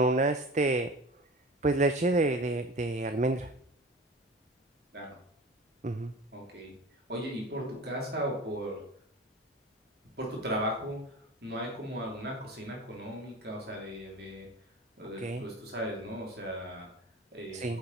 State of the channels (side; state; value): both; normal; correlation 0.36